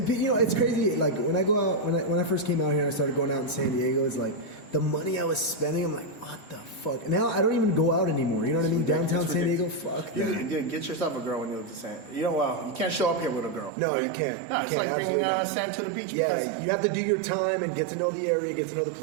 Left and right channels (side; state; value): left; drops out; at 13.7 s